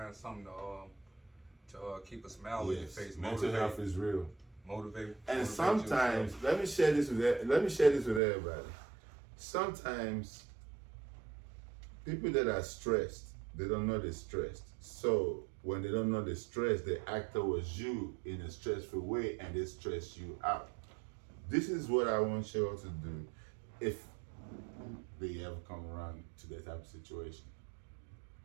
something to keep a smile on your face. Mental health is real. Motivate. And sometimes, let me share this with everybody. Sometimes people that are stressed, they don't know they're stressed. So when they don't know they're stressed, they act towards you in a stressful way, and they stress you out. This is what I want you all to do if they ever come around to that type of situation.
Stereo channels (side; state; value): left; drops out; at 8.2 s